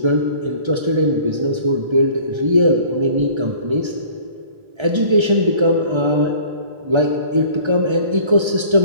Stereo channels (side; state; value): left; late; 1.3 ms